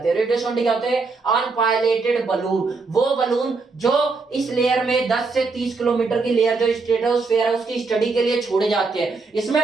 हैं। रेडियो सोंडे क्या होते हैं, अनपायलटेड बलून, वो बलून जो इस लेयर में 10 से 30 किलोमीटर की लेयर जो स्ट्रेटोस्फेयर है उसकी स्टडी के लिए छोड़े जाते हैं।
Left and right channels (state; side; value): quieter; left; 4.1 dB